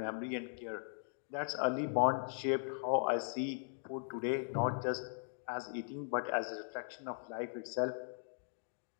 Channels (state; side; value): silent; right; digital silence